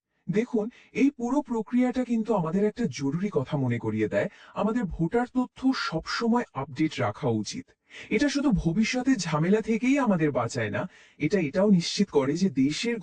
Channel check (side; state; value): both; identical; correlation 1.00